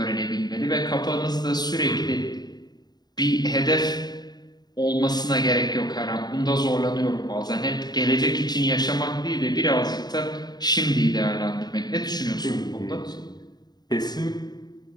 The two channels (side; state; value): right; late; 0.20 ms